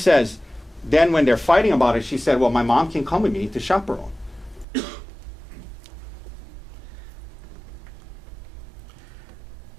then when they're fighting about it, she said, well, my mom can come with me to chaperone.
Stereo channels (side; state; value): left; drops out; at 4.7 s